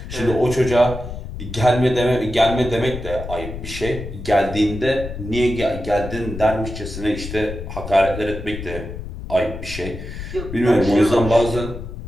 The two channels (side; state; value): left; noise; rumble, 9 dB below the sound